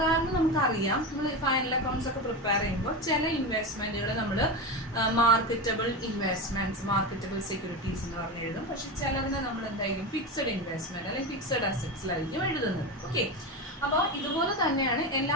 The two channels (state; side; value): normal; both; correlation 0.20